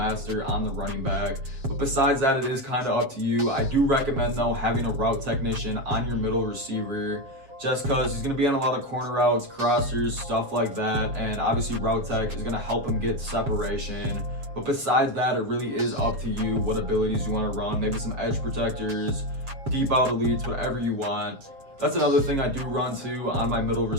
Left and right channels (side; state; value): left; late; 7.4 ms